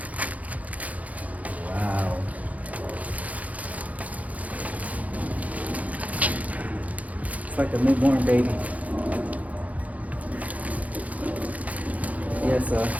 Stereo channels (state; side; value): late; left; 0.071 ms